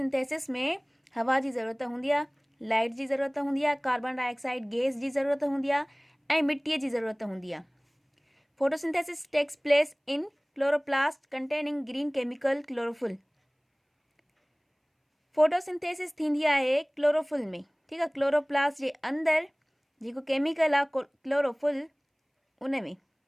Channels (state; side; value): identical; both; correlation 1.00